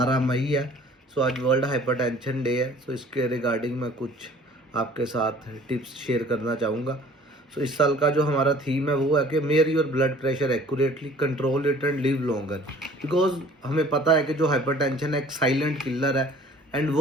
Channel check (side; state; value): both; normal; correlation 0.51